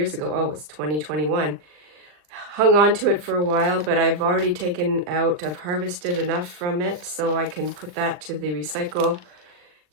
ago. Oh, it's 2021. Hung on to it for a while, but I've already taken out, I've harvested enough from it so I can put that to the recycle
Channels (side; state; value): left; late; 39 ms